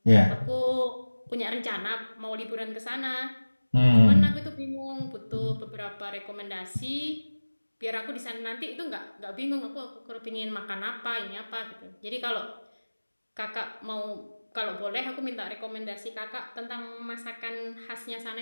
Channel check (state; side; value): inverted; both; correlation -1.00